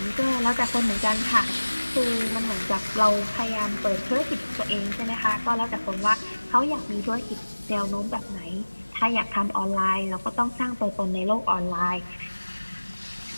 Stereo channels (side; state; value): both; inverted; correlation -1.00